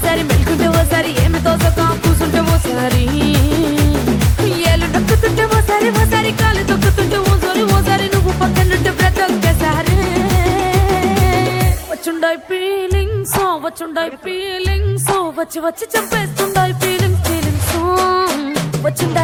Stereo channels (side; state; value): both; identical; correlation 1.00